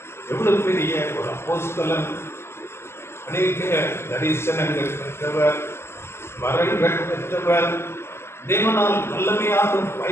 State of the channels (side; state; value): right; late; 0.12 ms